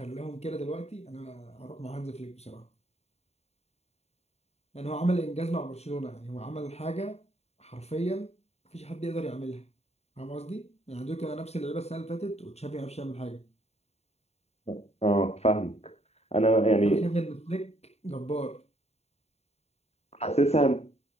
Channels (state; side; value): late; right; 0.31 ms